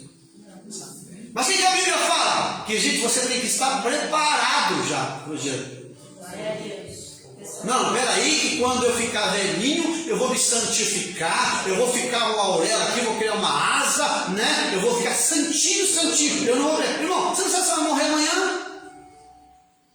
Mas o que a Bíblia fala? Que, gente, você tem que estar preparado já para o dia. Glória a Deus. Não, peraí, que quando eu ficar velhinho, eu vou me santificar, eu vou ficar uma auréola aqui, vou criar uma asa, né? Eu vou ficar santinho, santinho. Eu não vou morrer. Irmão, você não sabe se vai morrer amanhã?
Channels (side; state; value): both; identical; correlation 1.00